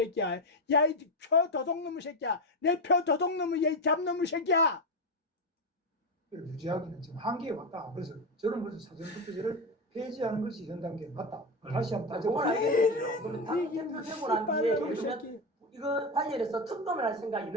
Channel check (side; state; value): both; normal; correlation 0.13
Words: 야이 표 도둑놈의 새끼야. 내 표 도둑놈의 야이 잡놈의 새끼야. 유지하기는 지금 한계에 왔다. 그래서 저는 그래서 사전투표제를 폐지하는 것이 현 단계에 맞다. 다시 한번 그건 따져보자. 알겠는데요. 그럼 당 대표 되고 난 뒤에 예를 들면 새끼. 이거 관련해서 특검을 할 생각이